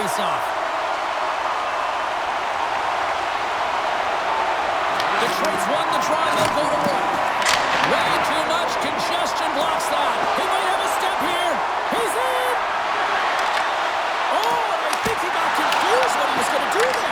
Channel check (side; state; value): both; identical; correlation 1.00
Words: Detroit's won the draw, and they'll go to work. Way too much congestion blocks that. He might have a step here. He's in! Oh, and I think he got confused what he was going to do